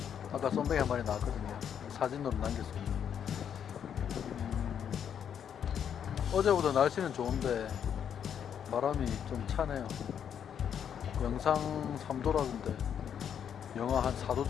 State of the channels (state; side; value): quieter; right; 8.5 dB